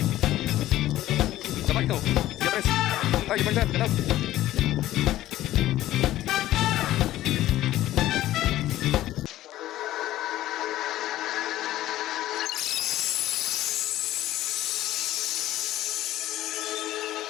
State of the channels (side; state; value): right; quieter; 14.6 dB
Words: Sabay ito. Sige, pres. Ay, ibang saan. Ganap.